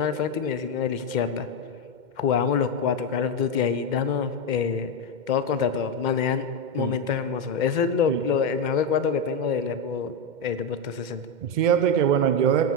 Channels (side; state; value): left; late; 2.1 ms